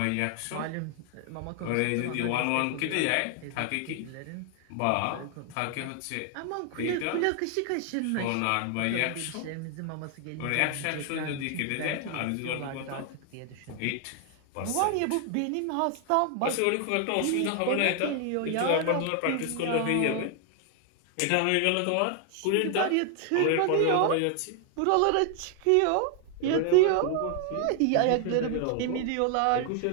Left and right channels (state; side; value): different; both; correlation 0.00